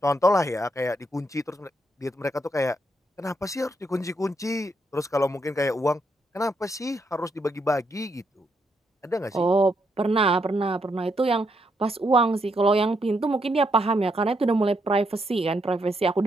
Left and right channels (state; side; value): normal; both; correlation 0.78